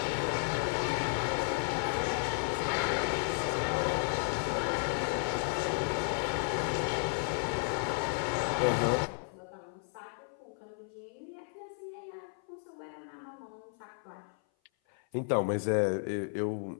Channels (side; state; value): right; silent; 55 dB below the other